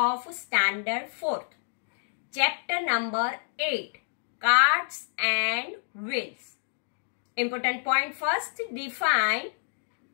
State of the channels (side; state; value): right; silent; 59 dB below the other